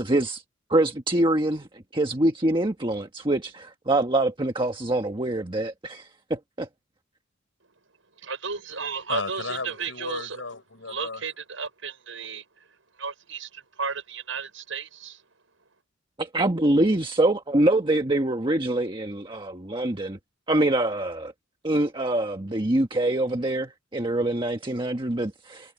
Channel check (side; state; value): both; normal; correlation 0.59